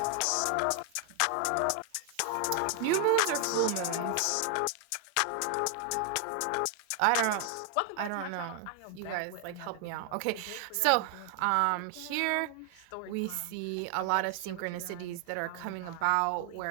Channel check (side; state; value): both; different; correlation 0.00